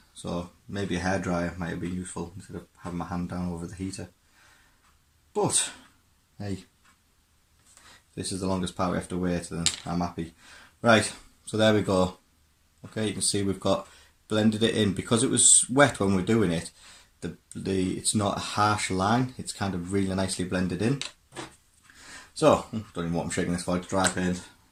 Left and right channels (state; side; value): identical; both; correlation 1.00